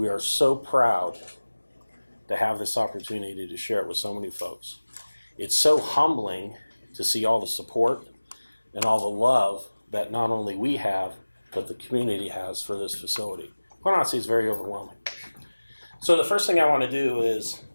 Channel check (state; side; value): inverted; both; correlation -1.00